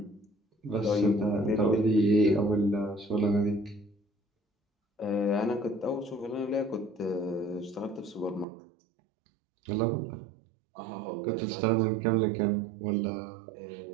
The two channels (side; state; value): left; drops out; at 8.5 s